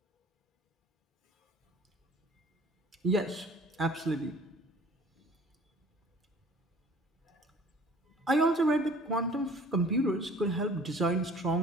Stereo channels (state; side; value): normal; both; correlation 0.50